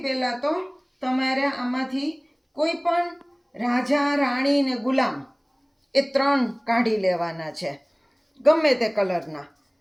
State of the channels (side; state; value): both; identical; correlation 1.00